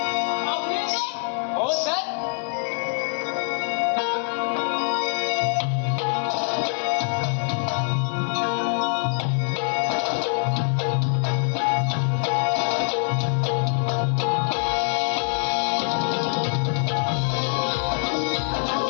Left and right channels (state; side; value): silent; right; 62 dB below the other